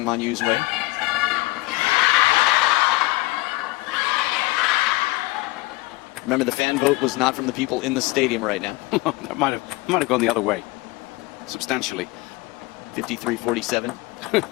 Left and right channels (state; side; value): quieter; right; 22.3 dB